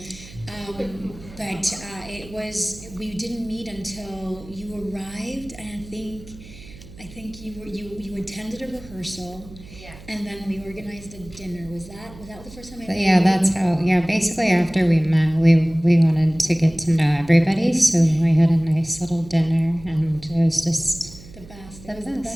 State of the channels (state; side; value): noise; right; hum, 19 dB below the sound